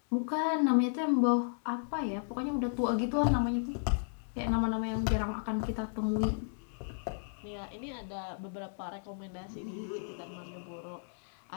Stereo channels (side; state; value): right; silent; digital silence